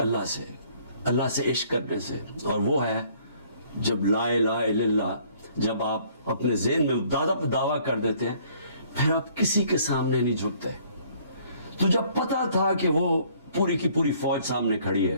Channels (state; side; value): inverted; both; correlation -0.60